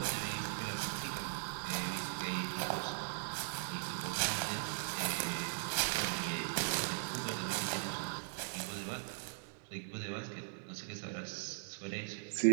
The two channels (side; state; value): left; silent; digital silence